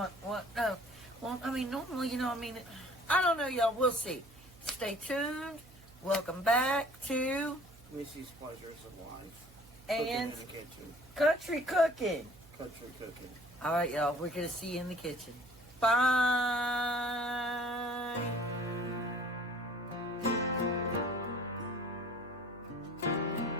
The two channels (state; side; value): noise; right; hum, 23 dB below the sound